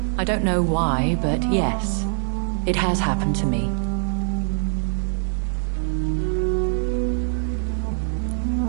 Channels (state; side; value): silent; left; 62 dB below the other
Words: I don't know why, but yes, it has happened to me.